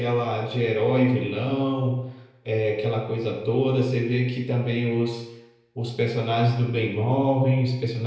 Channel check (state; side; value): identical; both; correlation 1.00